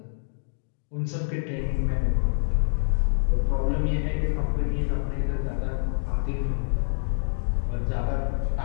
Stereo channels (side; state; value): right; silent; digital silence